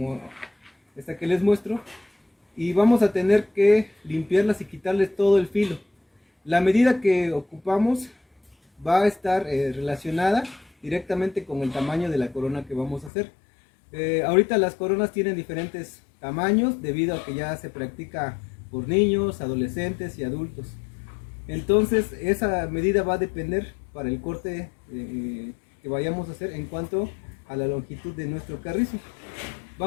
esta que les muestro, y vamos a tener que limpiarlas y quitarles todo el filo. La medida que ocupamos va a estar relacionada directamente con el tamaño de la corona que vamos a hacer. Ahorita las coronas tienen diferentes tamaños debido a que ya se practica por niños, adolescentes y adultos. Entonces esa medida va a depender para el corte que vayamos a hacer en cuanto a la longitud de nuestro carrizo.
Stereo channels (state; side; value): drops out; right; at 13.1 s